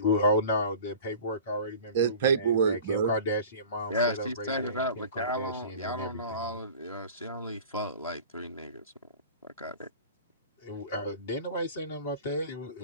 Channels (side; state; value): both; inverted; correlation -0.41